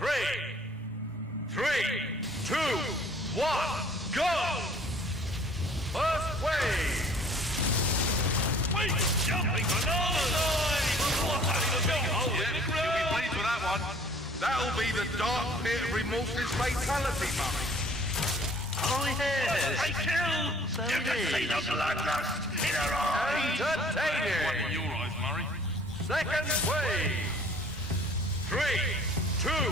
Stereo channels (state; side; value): normal; both; correlation 0.54